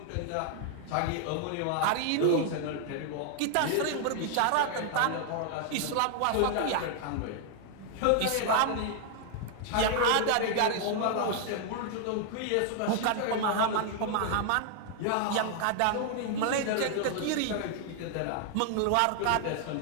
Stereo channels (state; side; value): different; both; correlation 0.00